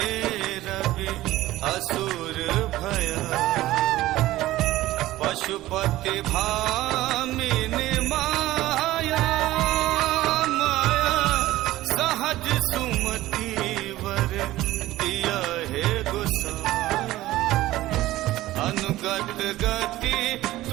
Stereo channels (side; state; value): left; quieter; 16.3 dB